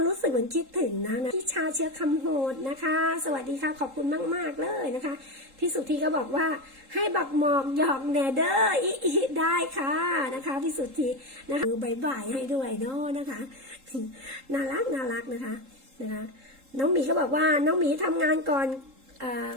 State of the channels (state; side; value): late; left; 3.7 ms